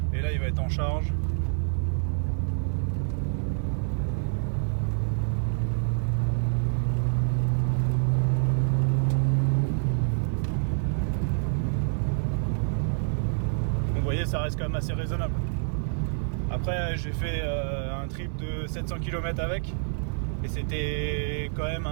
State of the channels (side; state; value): left; silent; 60 dB below the other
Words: Et là il va être en charge. Vous voyez, ça reste quand même assez raisonnable. Après j'ai fait un trip de 700 km avec et c'était quand même